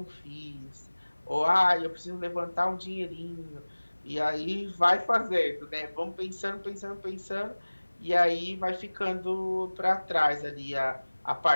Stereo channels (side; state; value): both; inverted; correlation -1.00